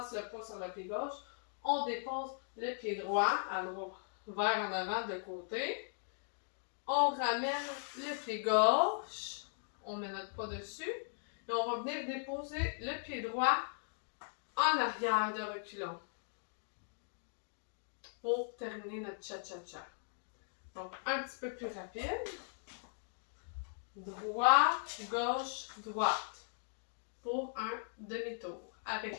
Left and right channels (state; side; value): silent; right; digital silence